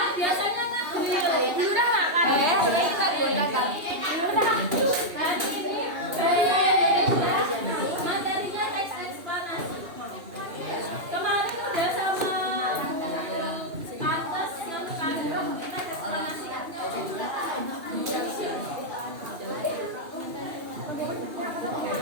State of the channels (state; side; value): late; left; 2.8 ms